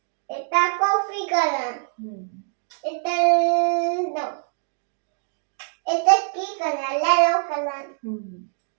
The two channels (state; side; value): silent; left; 57 dB below the other